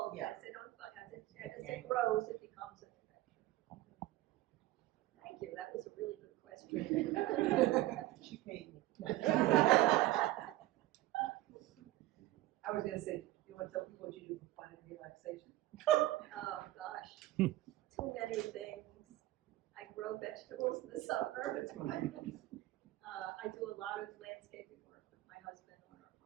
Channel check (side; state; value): left; quieter; 16.2 dB